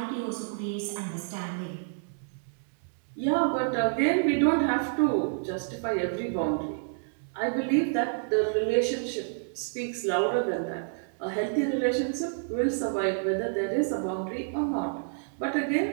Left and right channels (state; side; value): silent; left; digital silence